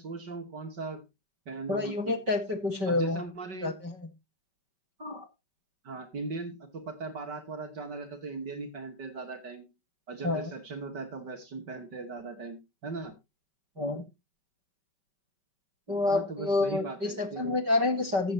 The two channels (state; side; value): late; left; 5.2 ms